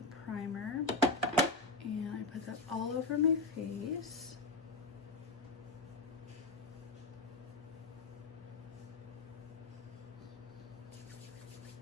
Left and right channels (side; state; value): right; quieter; 3.0 dB